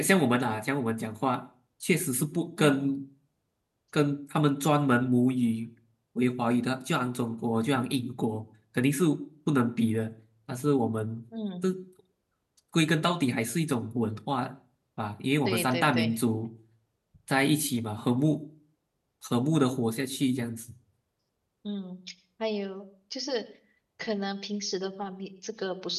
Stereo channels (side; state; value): both; identical; correlation 1.00